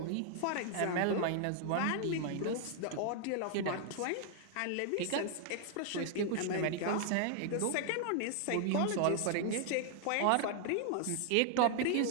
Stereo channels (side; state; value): both; different; correlation 0.00